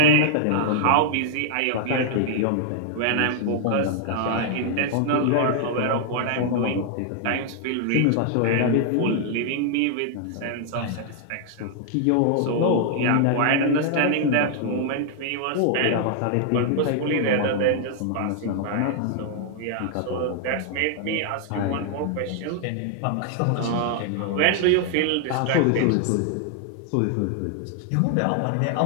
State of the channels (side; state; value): both; different; correlation 0.00